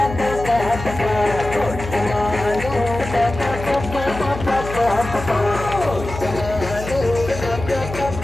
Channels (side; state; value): left; noise; hum, 9 dB below the sound